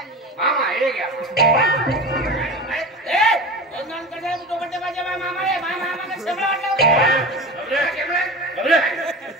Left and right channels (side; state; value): both; normal; correlation 0.31